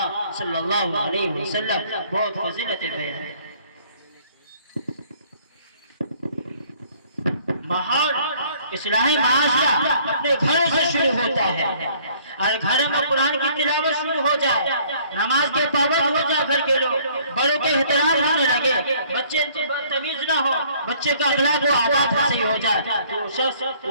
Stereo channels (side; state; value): both; inverted; correlation -0.58